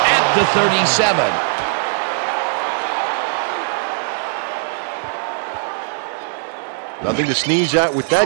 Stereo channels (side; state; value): left; silent; 57 dB below the other